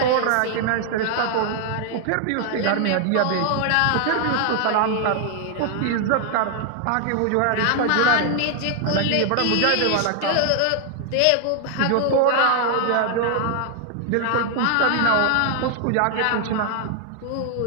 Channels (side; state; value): both; different; correlation 0.00